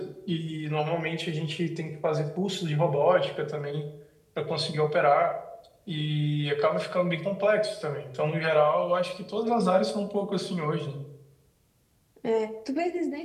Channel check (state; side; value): identical; both; correlation 1.00